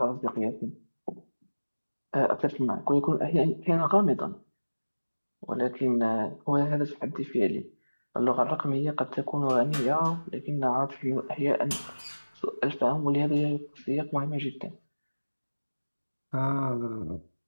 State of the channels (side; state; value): both; inverted; correlation -1.00